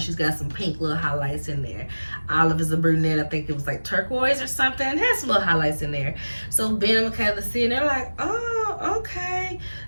She's got some pink little highlights in there. Olive is a brunette. I think it was like turquoise or something. It has some little highlights in there. So Ben and Michaela see, and they're like, oh, okay,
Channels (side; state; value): both; inverted; correlation -1.00